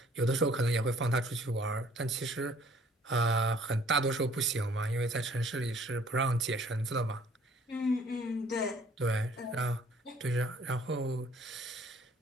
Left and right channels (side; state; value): both; normal; correlation 0.57